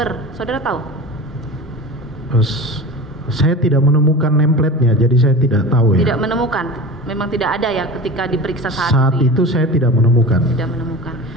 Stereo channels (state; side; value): normal; both; correlation 0.33